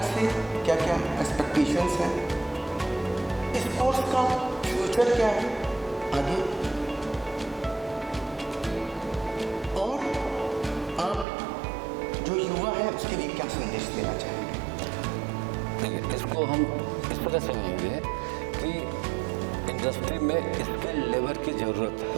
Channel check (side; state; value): left; drops out; at 11.2 s